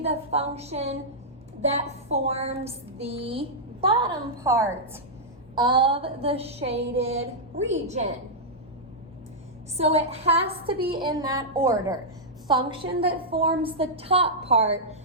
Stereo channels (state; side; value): normal; both; correlation -0.09